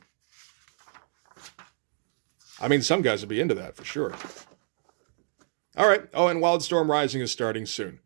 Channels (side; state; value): left; silent; digital silence